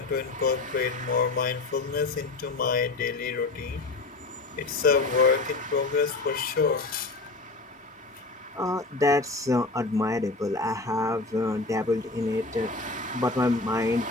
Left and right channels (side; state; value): right; quieter; 3.4 dB